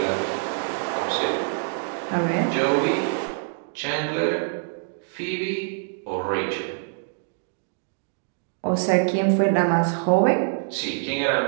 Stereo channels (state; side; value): silent; left; digital silence